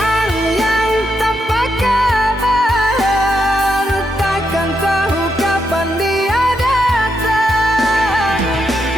yang tanpa kabar, takkan tahu kapan dia datang.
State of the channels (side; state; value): both; normal; correlation 0.81